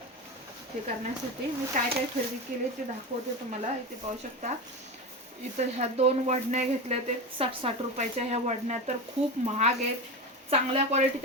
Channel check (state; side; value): normal; both; correlation 0.22